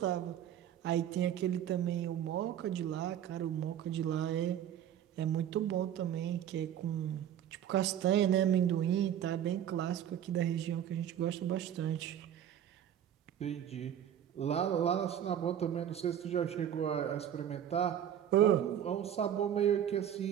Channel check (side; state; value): left; quieter; 10.1 dB